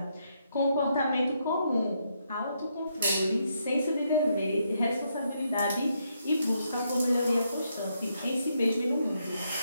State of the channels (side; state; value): both; inverted; correlation -0.78